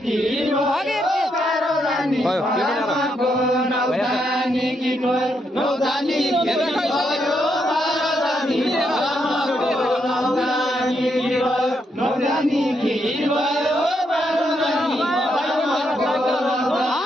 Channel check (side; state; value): both; normal; correlation 0.79